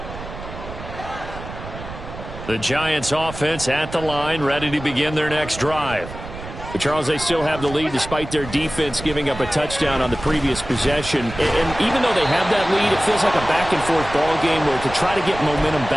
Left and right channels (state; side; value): noise; right; rumble, 12 dB below the sound